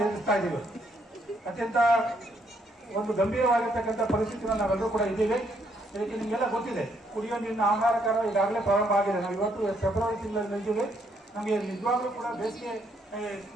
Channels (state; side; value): normal; both; correlation 0.72